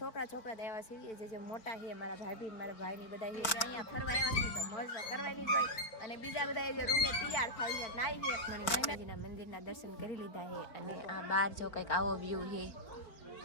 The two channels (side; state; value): right; late; 4.4 ms